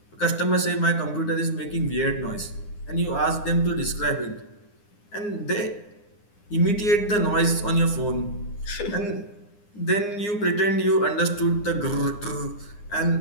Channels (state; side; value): late; right; 9.8 ms